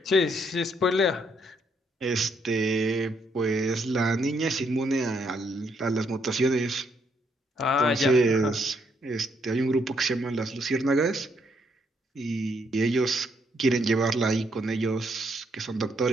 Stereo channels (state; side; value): normal; both; correlation 0.73